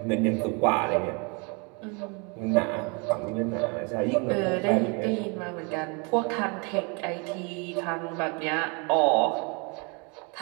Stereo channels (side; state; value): left; quieter; 32.6 dB